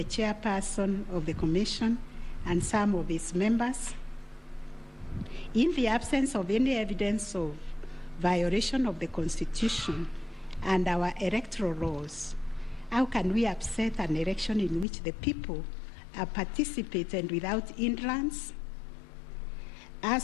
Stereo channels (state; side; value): drops out; right; at 14.9 s